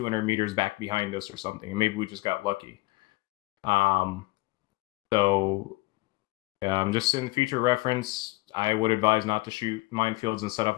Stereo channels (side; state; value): right; quieter; 22.2 dB